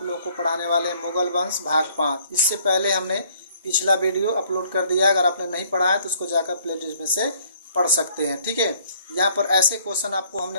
लोगों को पढ़ाने वाले हैं मुगल वंश भाग 5। इससे पहले हमने पिछला वीडियो अपलोड कर दिया, अगर आपने नहीं पढ़ा है तो उसको जाकर प्ले लिस्ट में से पढ़ सकते हैं। ठीक है, यहाँ पर ऐसे क्वेश्चन आपको हमने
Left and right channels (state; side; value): inverted; both; correlation -0.61